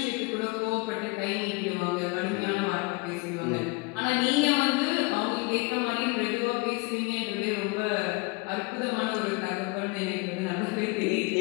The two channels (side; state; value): right; quieter; 27.5 dB